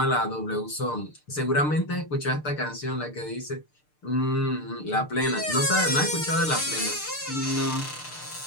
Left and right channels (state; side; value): late; right; 6.7 ms